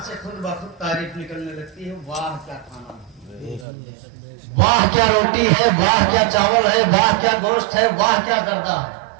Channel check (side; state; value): left; drops out; at 3.7 s